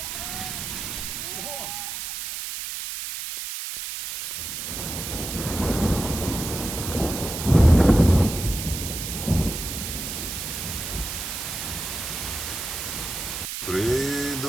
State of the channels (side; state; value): right; noise; hiss, 5 dB below the sound